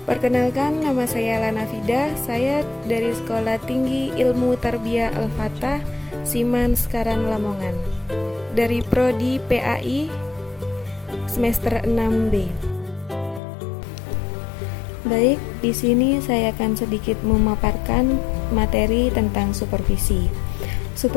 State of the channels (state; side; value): drops out; right; at 13.4 s